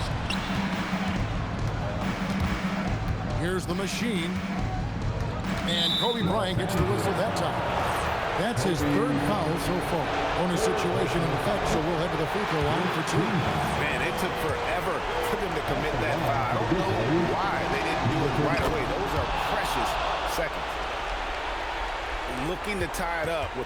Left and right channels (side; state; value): both; identical; correlation 1.00